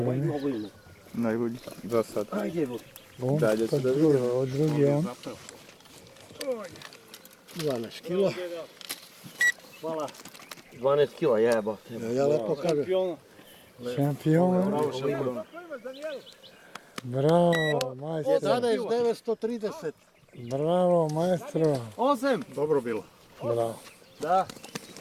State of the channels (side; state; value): both; identical; correlation 1.00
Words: ima. Najbolji do sad. Ajde, Bog. Dalje ću da vidim. Od drugi on. 12 kila. Hvala. 12 kila, jeba. Ja lepo kažem. Šampion. Bravo, majstro. 11930. Bravo, majstro. 8. Dobro bilo. Bravo. Da.